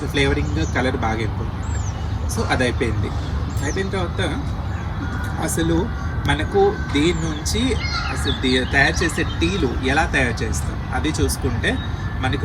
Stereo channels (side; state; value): both; identical; correlation 1.00